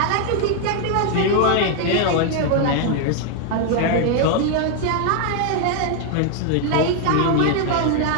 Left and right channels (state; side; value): different; both; correlation 0.00